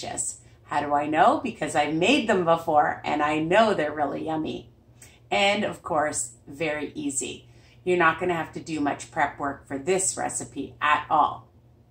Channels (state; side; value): identical; both; correlation 1.00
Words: How do I know? Because I made them before and I know they're really yummy. And of course, very easy. You're not gonna have to do much prep work for this recipe at all.